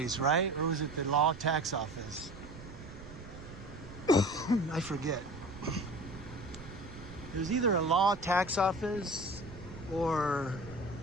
right? Or was it the law tax office? I forget. There's either a law tax office or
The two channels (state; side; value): noise; right; rumble, 15 dB below the sound